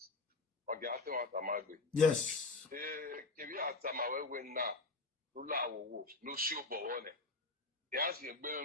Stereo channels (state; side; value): quieter; right; 3.5 dB